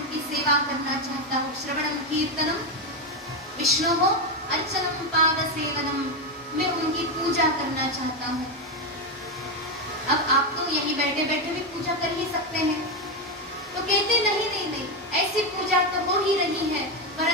की सेवा करना चाहता हूँ। श्रवणम कीर्तनम विष्णु हो अर्चनम पाद सेवनम, मैं उनकी पूजा करना चाहता हूँ। अब आप तो यहीं बैठे बैठे भी पूजा कर ही सकते हैं, तो कहते नहीं, ऐसी पूजा तो हो ही रही है,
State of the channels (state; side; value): normal; both; correlation 0.09